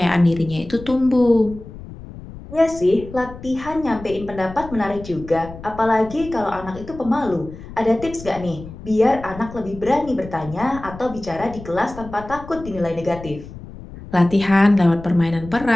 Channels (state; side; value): noise; left; rumble, 15 dB below the sound